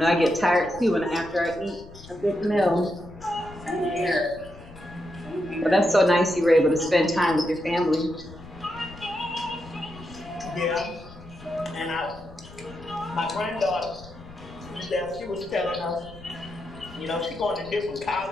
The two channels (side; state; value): left; noise; rumble, 18 dB below the sound